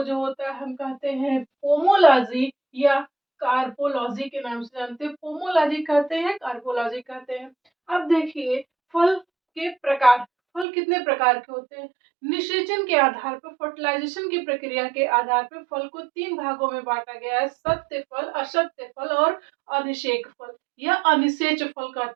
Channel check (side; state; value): left; drops out; at 10.7 s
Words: जो होता है हम कहते हैं पोमोलॉजी या कार्पोलॉजी के नाम से जानते हैं। पोमोलॉजी कहते हैं, कार्पोलॉजी कहते हैं। अब देखिए फल के प्रकार। फल कितने प्रकार के होते हैं? निषेचन के आधार पर, फर्टिलाइजेशन की प्रक्रिया के आधार पर फल को 3 भागों में बांटा गया है। सत्य फल, असत्य फल और अनिषेक फल या अनिषेच फल